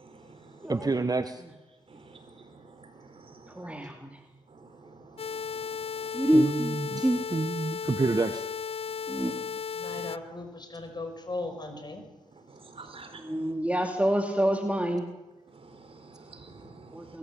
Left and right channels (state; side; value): normal; both; correlation 0.84